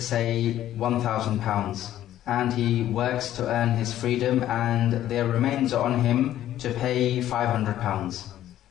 say, £1,000, and he works to earn his freedom and there remains on him to pay £500,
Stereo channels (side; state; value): right; quieter; 12.5 dB